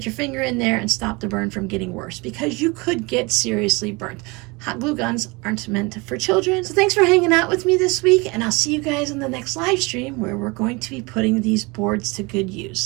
your finger in there and stop the burn from getting worse, because you could get seriously burnt. Hot glue guns aren't meant for children. So thanks for hanging out with me this week, and I'll see you guys in the next live stream where we're going to be putting these boards to good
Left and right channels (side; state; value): left; quieter; 26.3 dB